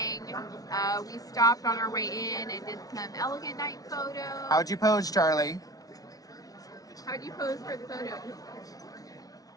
We stopped on our way in and did some elegant night photos. How'd you pose, Charlie? How'd you pose for the photos?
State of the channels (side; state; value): right; late; 0.18 ms